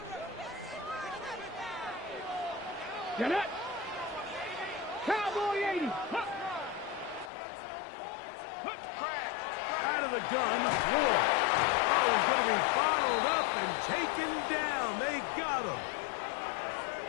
Get it. Cowboy 80. Out of the gun, Ward. Oh, he's going to be bottled up and taken down. They got him.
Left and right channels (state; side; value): drops out; right; at 7.3 s